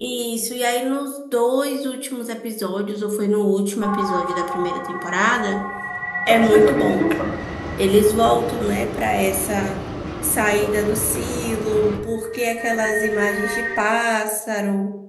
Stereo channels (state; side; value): identical; both; correlation 1.00